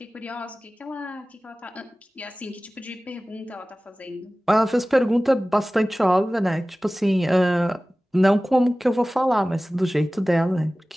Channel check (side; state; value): both; normal; correlation 0.97